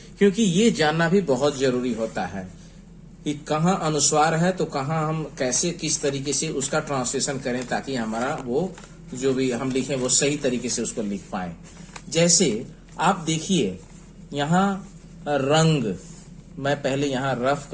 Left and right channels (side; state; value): both; identical; correlation 1.00